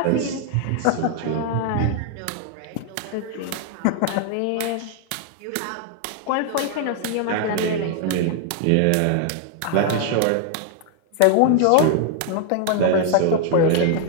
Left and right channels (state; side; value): different; both; correlation 0.00